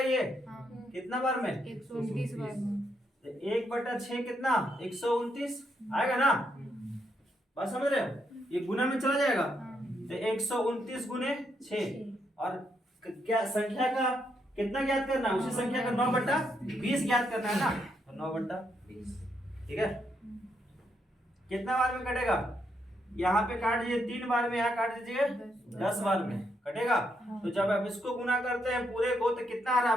ये कितना बार में? 129 बार में। तो 1/6 कितना? 129 आएगा ना? बात समझ रहे हो? ये गुना में चला जाएगा। तो 129 गुने 6 और क्या संख्या का कितना ज्ञात करना है? उसी संख्या का 9/20 ज्ञात करना है ना? तो 9/20 ठीक है। कितना बार में कटेगा? यहाँ पे काट दीजिए 3 बार में, यहाँ काट दीजिए 10 बार में कटेगा। तो जब आप इसको गुना करते हैं पूरे को तो कितना आ रहा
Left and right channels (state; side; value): normal; both; correlation 0.78